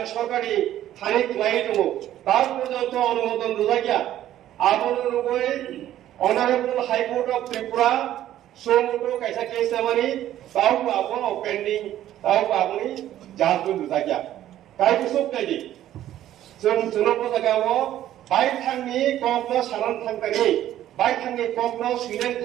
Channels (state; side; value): quieter; left; 12.6 dB